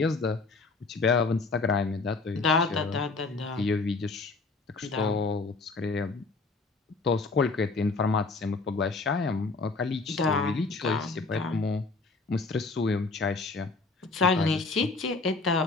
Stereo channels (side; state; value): right; quieter; 3.9 dB